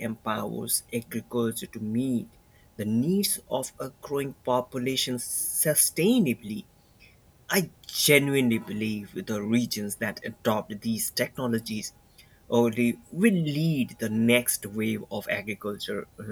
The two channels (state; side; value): identical; both; correlation 1.00